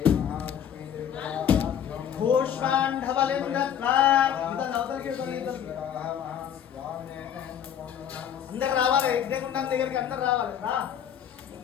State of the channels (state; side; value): quieter; right; 9.1 dB